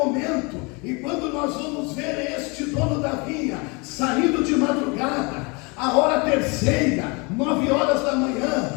E quando nós vamos ver este dono da vinha saindo de madrugada, a hora terceira, 9 horas da manhã,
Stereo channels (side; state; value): right; quieter; 29.6 dB